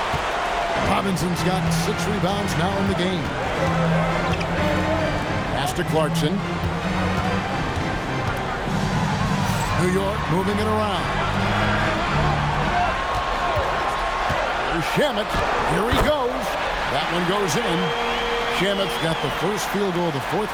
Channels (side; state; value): both; identical; correlation 1.00